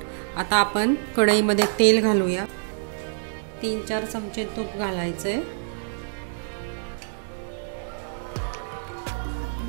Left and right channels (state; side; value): silent; left; digital silence